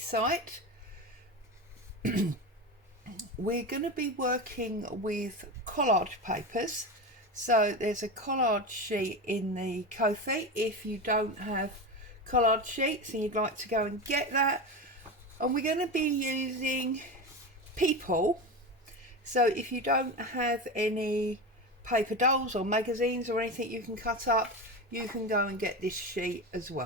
We're going to be working with collage papers. So there's a collage sheet in the Kofi if you don't have collage sheets and you'd like to go and get that. And we're going to be using people. So if you don't have any paper dolls or magazines or anything you can cut up, you can go and get this sheet as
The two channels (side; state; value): both; normal; correlation 0.22